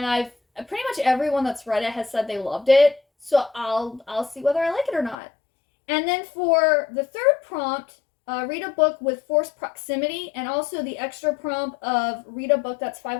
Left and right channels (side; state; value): right; drops out; at 5.2 s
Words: pretty much everyone that's read it has said they loved it. So I'll see whether I like it or not. And then for the third prompt, read a book with forced proximity, and also the extra prompt of read a book that's